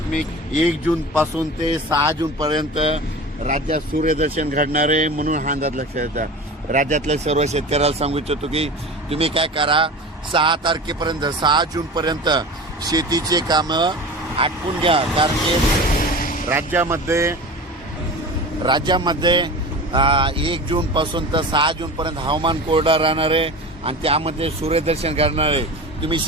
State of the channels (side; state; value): both; normal; correlation 0.33